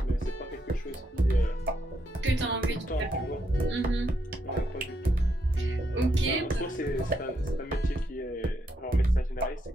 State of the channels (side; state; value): both; normal; correlation 0.77